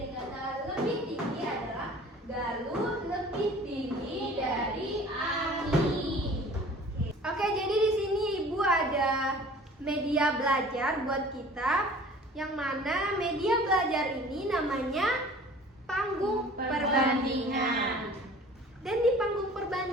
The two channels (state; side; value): normal; both; correlation 0.47